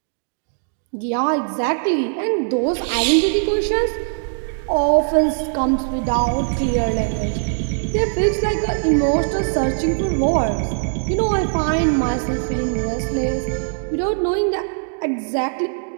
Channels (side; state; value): left; silent; digital silence